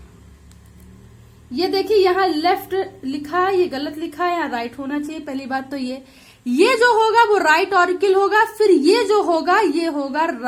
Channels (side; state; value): both; identical; correlation 1.00